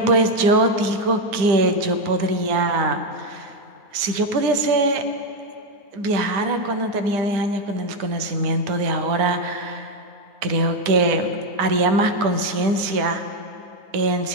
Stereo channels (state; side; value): late; left; 9.5 ms